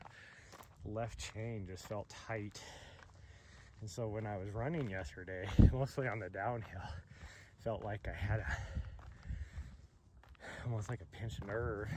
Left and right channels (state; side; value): identical; both; correlation 1.00